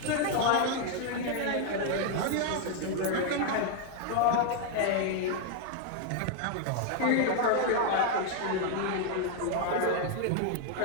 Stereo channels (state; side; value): different; both; correlation 0.00